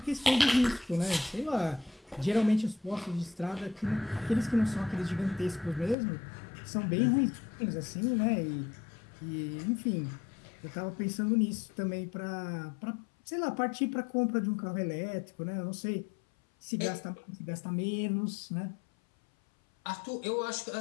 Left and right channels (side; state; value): right; drops out; at 6.0 s